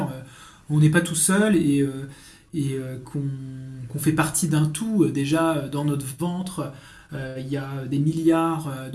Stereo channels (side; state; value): both; identical; correlation 1.00